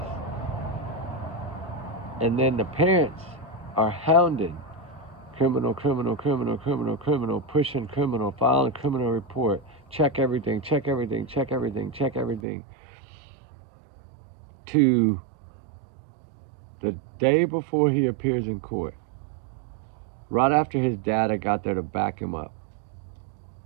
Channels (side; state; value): left; drops out; at 12.4 s